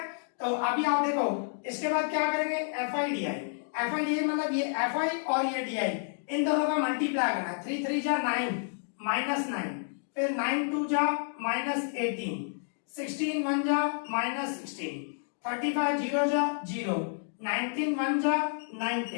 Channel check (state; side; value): silent; right; digital silence